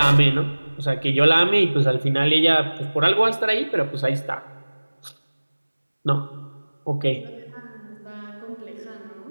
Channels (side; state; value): both; inverted; correlation -1.00